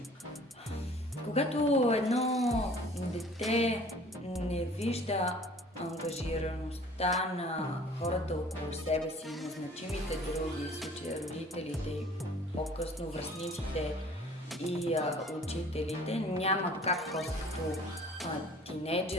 Когато едно дете не вижда ангажираността на хората около себе си, на значимите други, в случая родителите и по-късно връстниците и учителите, няма как като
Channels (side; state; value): both; normal; correlation 0.50